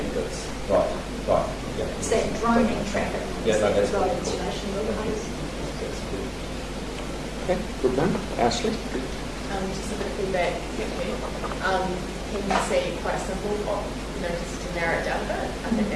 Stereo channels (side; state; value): both; identical; correlation 1.00